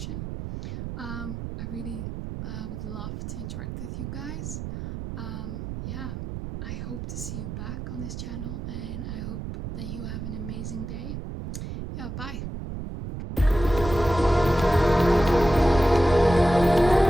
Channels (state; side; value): noise; right; rumble, 7 dB below the sound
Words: I really would love to interact with you guys. Yeah, I hope to see you back on this channel, and I hope that you have an amazing day. Yeah, bye.